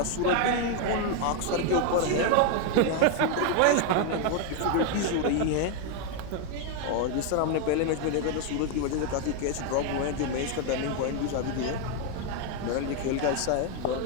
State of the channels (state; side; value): different; both; correlation 0.01